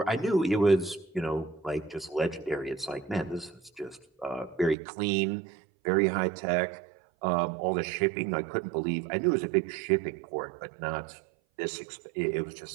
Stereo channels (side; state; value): left; drops out; at 4.8 s